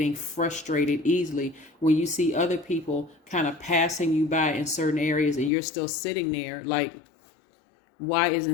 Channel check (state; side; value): drops out; right; at 5.5 s